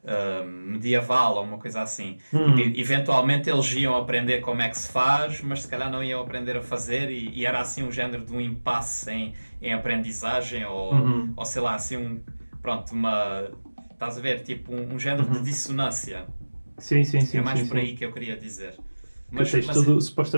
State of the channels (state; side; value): inverted; both; correlation -1.00